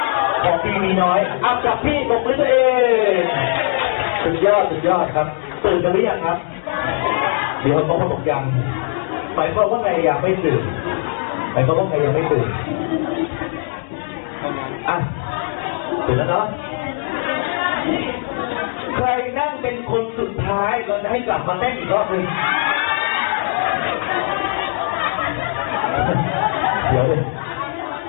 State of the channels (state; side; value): silent; right; 66 dB below the other